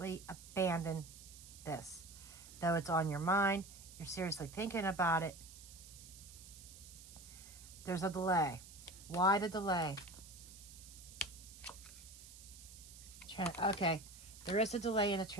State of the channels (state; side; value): noise; right; hiss, 16 dB below the sound